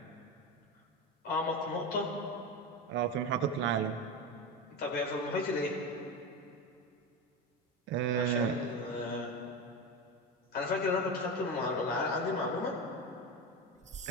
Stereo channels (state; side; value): normal; both; correlation 0.20